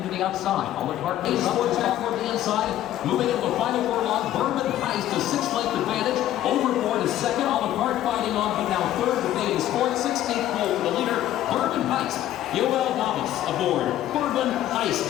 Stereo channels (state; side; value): quieter; right; 12.8 dB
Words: to the outside. Olive Park is towards back toward the inside. Moving into the final furlong. Bourbon Heist to 6-length advantage. Overboard is second. Olive Park fighting on, but now third. Debate is fourth. 16th pole for the leader. Bourbon Heist. Yoel Novice aboard. Bourbon Heist